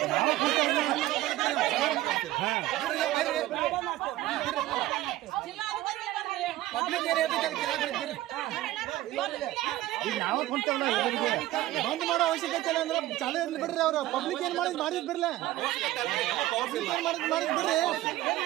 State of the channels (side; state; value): left; quieter; 15.9 dB